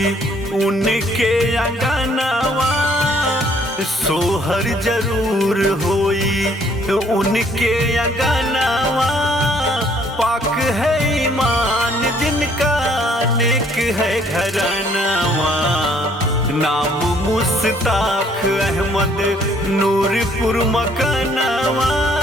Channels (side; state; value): both; normal; correlation 0.63